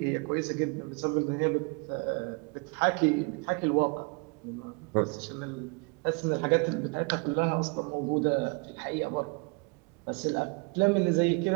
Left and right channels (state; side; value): quieter; left; 31.3 dB